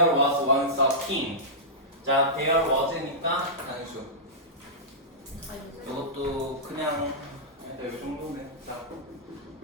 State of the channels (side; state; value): both; normal; correlation -0.15